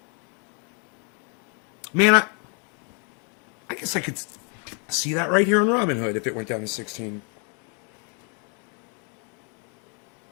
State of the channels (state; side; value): quieter; right; 37.8 dB